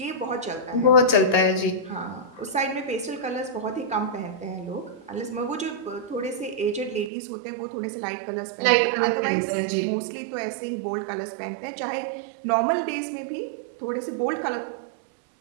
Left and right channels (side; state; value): left; drops out; at 7.1 s